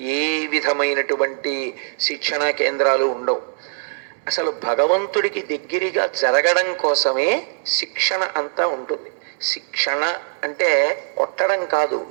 ఏ విధమైనటువంటి శిక్షణా కేంద్రాలు ఉండవు. అసలు భగవంతుడికి దగ్గరగా జరగడం కోసమే శిక్షణ అంతా ఉంటుంది. శిక్షణ అంటే కొట్టడం కాదు,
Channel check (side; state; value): left; silent; 65 dB below the other